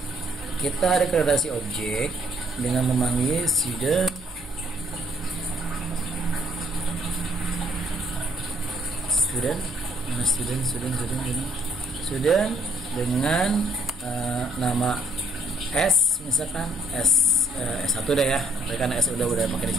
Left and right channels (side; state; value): both; normal; correlation 0.64